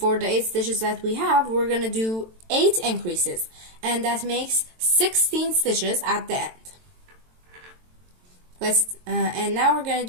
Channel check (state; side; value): late; left; 22 ms